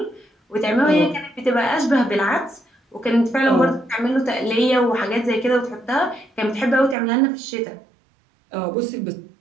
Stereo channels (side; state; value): left; drops out; at 7.0 s